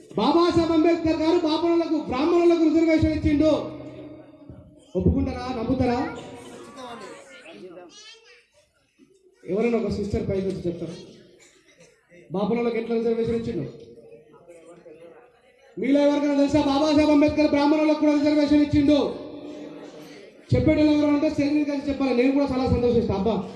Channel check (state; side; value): identical; both; correlation 1.00